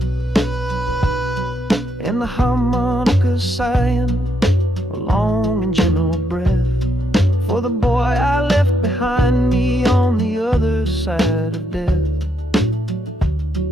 And the harmonicas sighing a long and gentle breath for the boy I left behind me on the other side of death.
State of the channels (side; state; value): both; normal; correlation 0.77